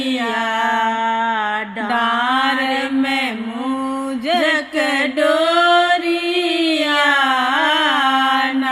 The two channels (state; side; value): identical; both; correlation 1.00